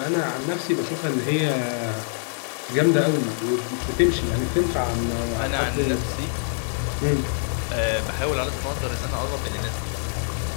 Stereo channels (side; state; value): right; silent; 62 dB below the other